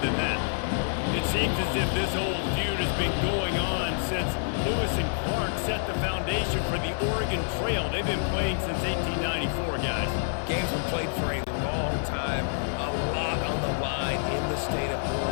that. It seems as if this old feud has been going on since Lewis and Clark set the foundation for the Oregon Trail. They've been playing since 1894, guys. Game's been played for a long time, a lot on the line in the state of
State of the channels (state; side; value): silent; right; digital silence